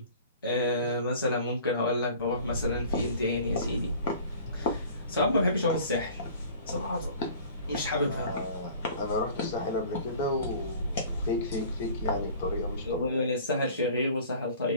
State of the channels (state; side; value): inverted; both; correlation -0.46